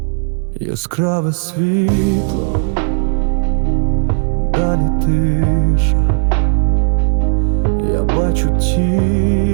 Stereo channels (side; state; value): left; silent; digital silence